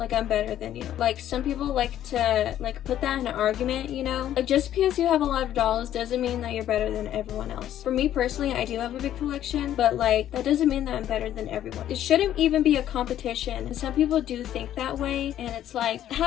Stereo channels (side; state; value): right; quieter; 11.6 dB